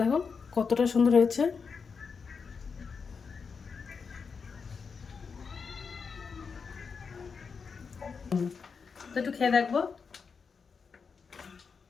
কতটা সুন্দর হয়েছে। তো একটু খেয়ে দেখবো।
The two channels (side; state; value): right; quieter; 5.5 dB